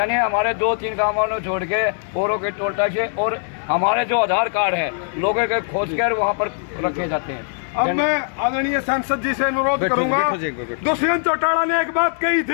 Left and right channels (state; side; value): silent; right; digital silence